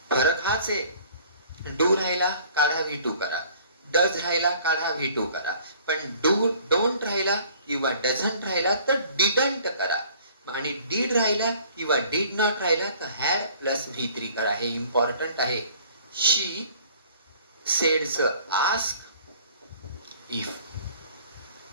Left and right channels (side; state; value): both; inverted; correlation -0.53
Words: फरक हाच आहे. डू राहिला काढा, V2 करा. डज राहिला काढा, V2 करा. पण डोंट राहिला किंवा डझंट राहिला तर डिडंट करा. आणि डीड राहिला किंवा डीड नॉट राहिला तर हॅड प्लस V3 करा. हे इम्पॉर्टंट आहे. शी सेड्स आस्क इफ.